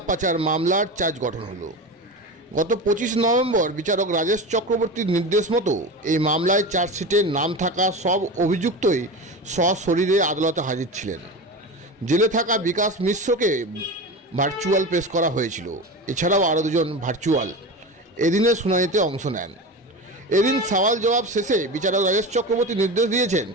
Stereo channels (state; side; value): normal; both; correlation 0.26